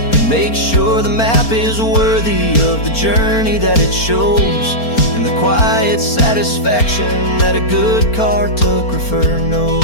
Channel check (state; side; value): late; right; 4.4 ms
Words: make sure the map is worthy of the journey that it shows, and the quiet satisfaction that a good cartographer knows.